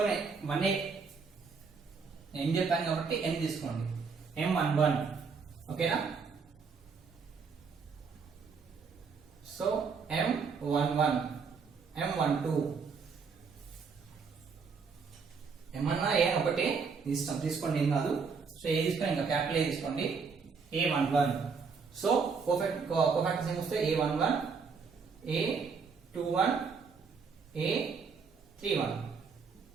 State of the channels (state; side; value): quieter; left; 5.3 dB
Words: వన్ ఏం చెప్పాను కాబట్టి n తీసుకోండి, M11 ఓకేనా. సో M11 M12 ఏమన్నా ఏ ఒకటి తీసుకోండి, ఏం కాదు. సో ఏ తీసుకోండి, ఇంకా క్యాపిటల్ ఏ తీసుకోండి, A11. సో కోఫాక్టర్స్ ఏం వస్తే A11 A21 A31